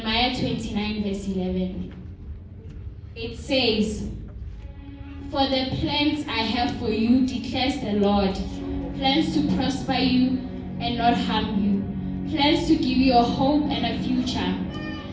29 verse 11. It says, "For the plans I have for you, declares the Lord, plans to prosper you and not harm you, plans to give you a hope and a future."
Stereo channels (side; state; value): both; identical; correlation 1.00